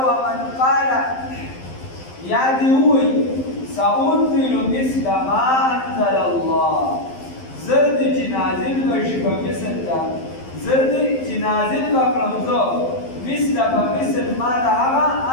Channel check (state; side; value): late; right; 12 ms